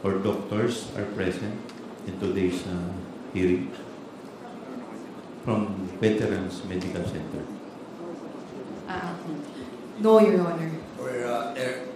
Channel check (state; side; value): identical; both; correlation 1.00